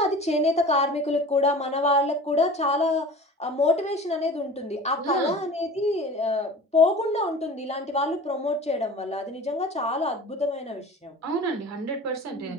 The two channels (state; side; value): normal; both; correlation 0.39